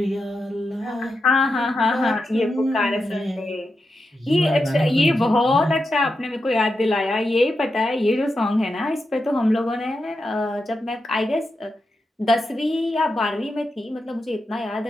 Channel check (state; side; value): normal; both; correlation 0.88